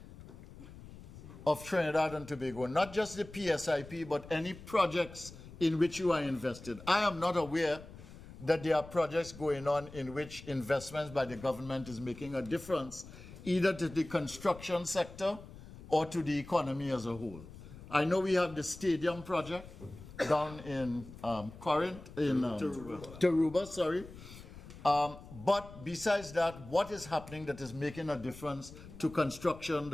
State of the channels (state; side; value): noise; left; rumble, 16 dB below the sound